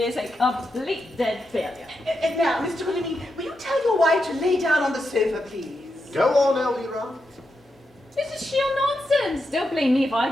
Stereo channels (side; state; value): both; normal; correlation 0.86